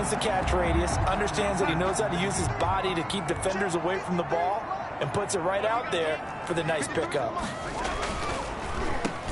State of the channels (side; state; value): both; identical; correlation 1.00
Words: the catch radius, understands that he knows how to use his body to keep defenders away from the ball, and puts it right out there for the nice pickup.